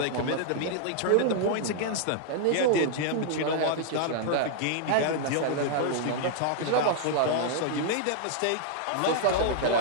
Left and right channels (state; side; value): different; both; correlation -0.01